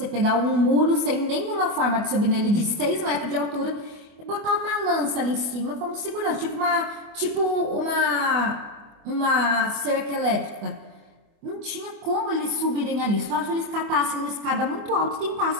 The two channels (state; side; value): late; left; 24 ms